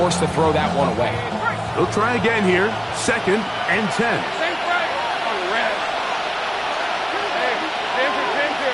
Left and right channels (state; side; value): identical; both; correlation 1.00